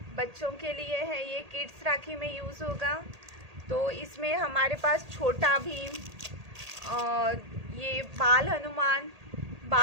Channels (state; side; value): late; left; 1.8 ms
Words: बच्चों के लिए है, ये किड्स राखी में यूज़ होगा। तो इसमें हमारे पास छोटा भीम और ये बाल हनुमान,